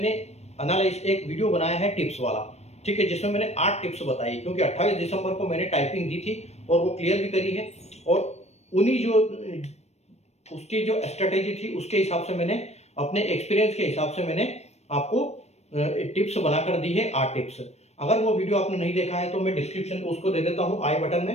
एक वीडियो बनाया है टिप्स वाला, ठीक है, जिसमें मैंने 8 टिप्स बताई, क्योंकि 28 दिसंबर को मैंने टाइपिंग दी थी और वो क्लियर भी करी है। और उन्हीं जो उसकी जो स्ट्रेटेजी थी उसके हिसाब से मैंने अपने एक्सपीरियंस के हिसाब से मैंने आपको टिप्स बनाकर दी है, 8 टिप्स। अगर वो वीडियो आपने नहीं देखा है तो मैं डिस्क्रिप्शन उसको दे देता हूँ आई बटन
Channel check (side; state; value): right; late; 0.31 ms